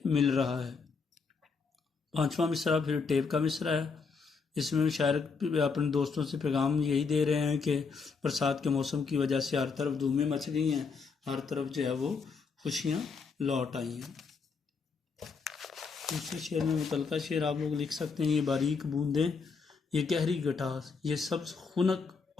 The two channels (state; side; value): quieter; right; 5.0 dB